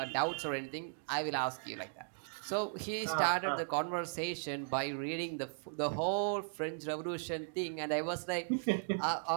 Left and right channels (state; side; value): silent; left; digital silence